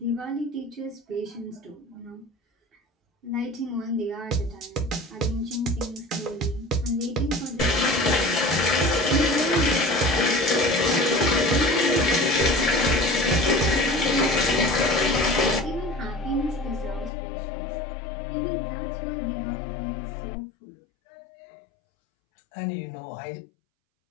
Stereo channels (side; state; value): right; drops out; at 17.1 s